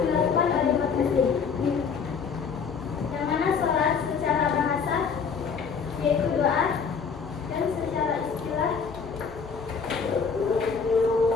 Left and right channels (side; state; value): right; quieter; 5.9 dB